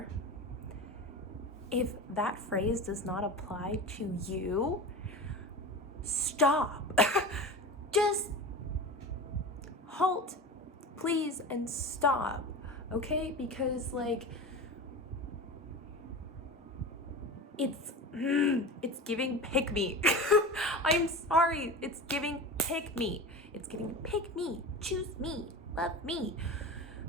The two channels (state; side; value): normal; both; correlation 0.30